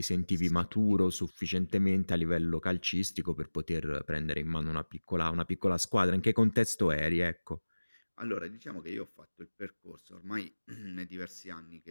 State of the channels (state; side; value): inverted; both; correlation -1.00